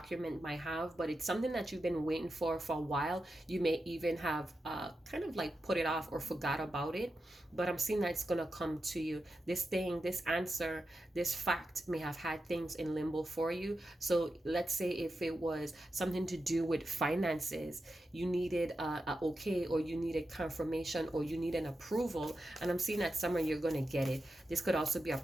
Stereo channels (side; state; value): both; normal; correlation 0.89